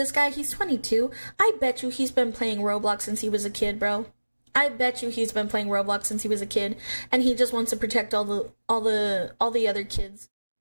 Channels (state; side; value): inverted; both; correlation -1.00